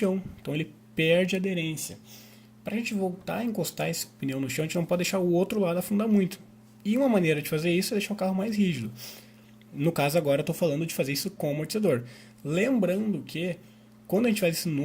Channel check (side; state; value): both; identical; correlation 1.00